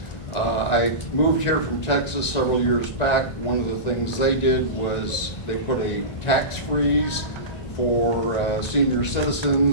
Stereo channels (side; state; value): right; late; 1.9 ms